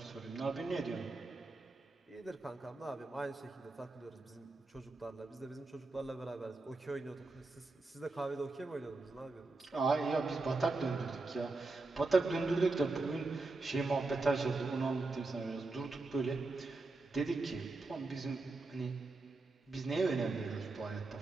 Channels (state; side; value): quieter; left; 3.4 dB